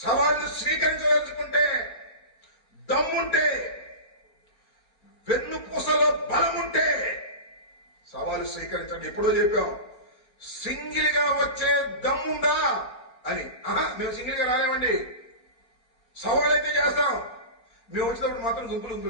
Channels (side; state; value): right; late; 4.3 ms